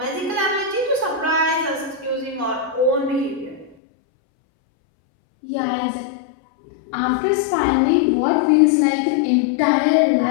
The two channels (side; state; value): right; drops out; at 3.8 s